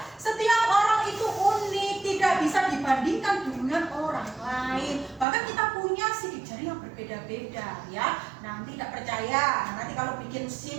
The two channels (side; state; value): left; drops out; at 5.2 s